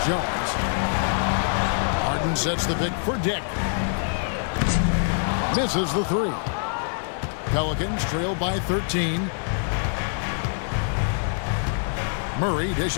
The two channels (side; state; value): right; silent; digital silence